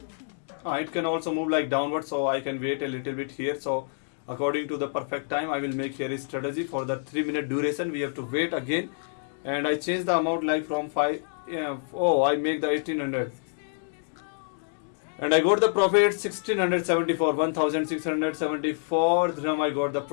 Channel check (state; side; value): silent; right; digital silence